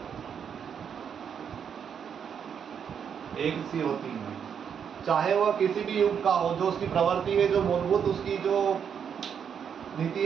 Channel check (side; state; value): left; quieter; 7.6 dB